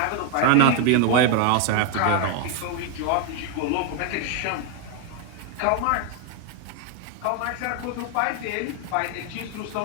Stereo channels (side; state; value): both; different; correlation 0.01